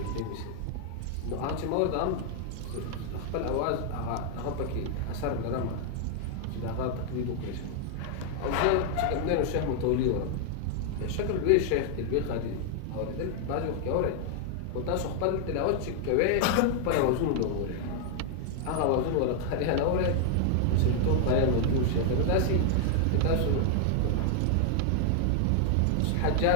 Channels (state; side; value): different; both; correlation 0.00